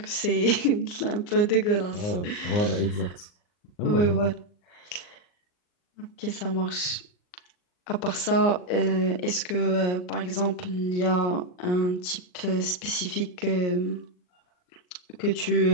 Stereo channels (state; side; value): late; right; 39 ms